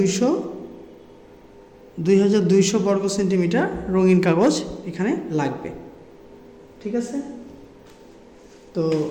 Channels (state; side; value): identical; both; correlation 1.00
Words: বর্গ সেন্টিমিটার রঙিন কাগজ এখানে লাগবে। ঠিক আছে, তো